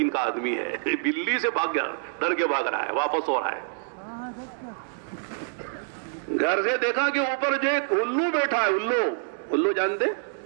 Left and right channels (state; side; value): silent; left; digital silence